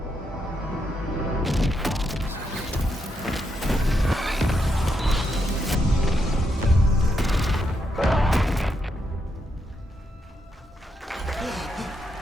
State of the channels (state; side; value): normal; both; correlation 0.81